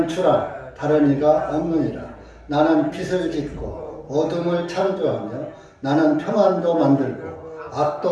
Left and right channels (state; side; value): identical; both; correlation 1.00